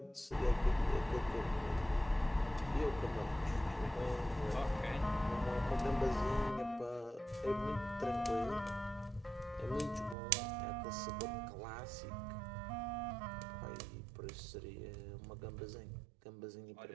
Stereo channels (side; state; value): left; drops out; at 10.2 s